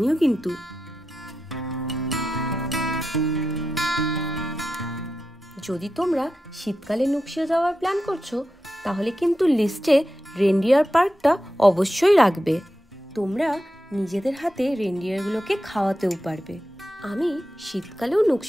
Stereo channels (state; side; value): normal; both; correlation 0.89